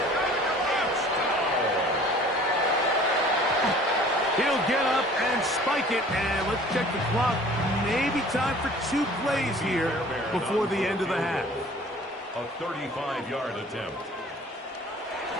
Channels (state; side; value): normal; both; correlation 0.49